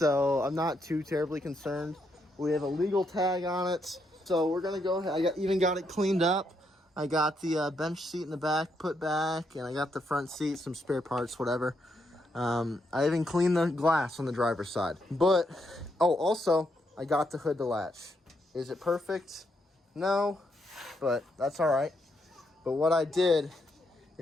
I'm not too terribly concerned. We have a legal tag on it, so we're gonna go ahead. I even got it cleaned up. I got the bench seat in the back put back, and I got the front seat, some spare parts, whatever. I even cleaned the glass on the driver's side. But, oh, also, I got the hood to latch. Is it perfect? No, but that's all right. But what I did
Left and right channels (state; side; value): normal; both; correlation 0.78